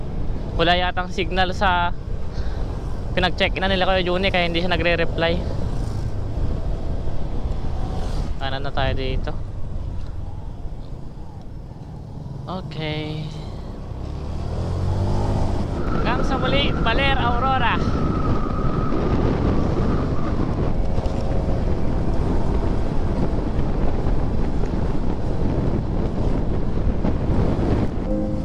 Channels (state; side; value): identical; both; correlation 1.00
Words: Wala yatang signal sa pinag-check na nila Kuya Juni, kaya hindi siya nagre-reply. Kanan na tayo dito. Okay. Hanggang sa muli, Baler, Aurora.